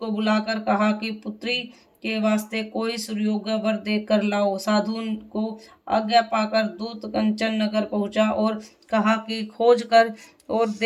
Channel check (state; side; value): identical; both; correlation 1.00